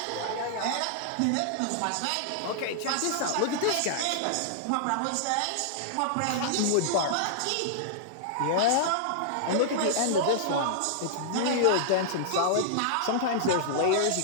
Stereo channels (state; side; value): different; both; correlation -0.01